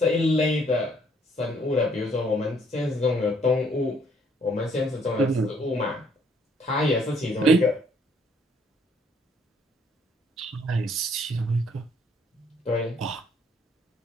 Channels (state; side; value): normal; both; correlation 0.65